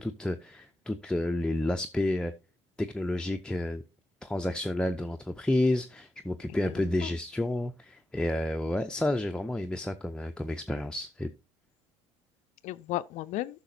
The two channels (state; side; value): normal; both; correlation 0.89